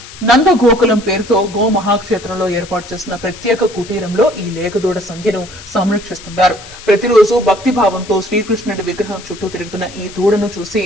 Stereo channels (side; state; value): left; noise; hiss, 17 dB below the sound